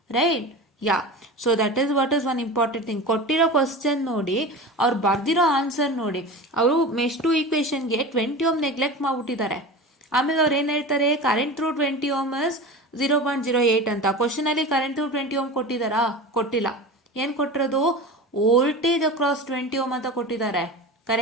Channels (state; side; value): normal; both; correlation 0.31